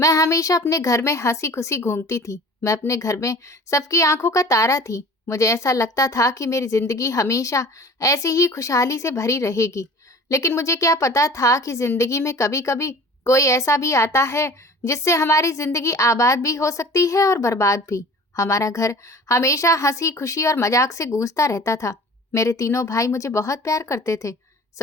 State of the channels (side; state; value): both; normal; correlation 0.43